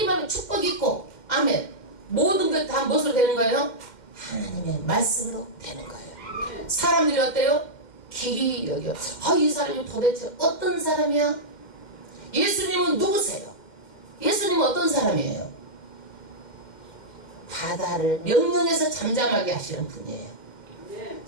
많으면 축복이 있고 아멘. 모든 것 다 무엇으로 되는 거예요? 하나님의 말씀으로 되는 거예요. 사람들이 어때요? 길이 여겨. 이 사람이 도대체 어떤 사람이야? 예수님은 누구세요? 예수님은 어떤 사람이에요? 바다를 명령해서 잠잠하게 하시는 분이에요.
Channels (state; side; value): late; right; 2.1 ms